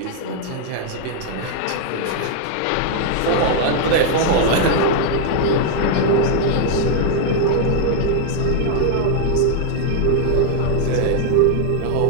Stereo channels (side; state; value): both; different; correlation 0.00